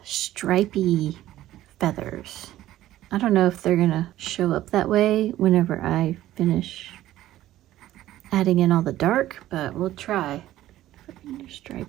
stripy feathers. I don't know if they're gonna show up that way whenever I finish adding in all the dark, but we'll try for your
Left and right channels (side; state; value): left; quieter; 14.2 dB